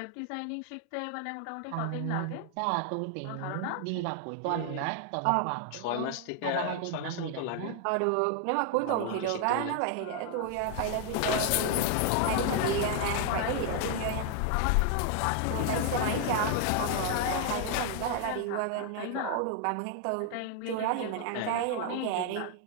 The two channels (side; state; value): both; different; correlation 0.00